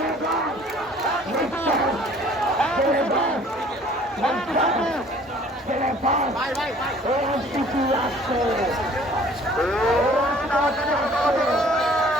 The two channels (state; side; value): normal; both; correlation 0.54